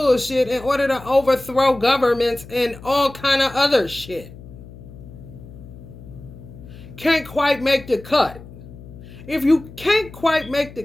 in order to overthrow governments and all kind of other shit. Can't quite make the cut. If you can't quite make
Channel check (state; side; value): noise; left; hum, 17 dB below the sound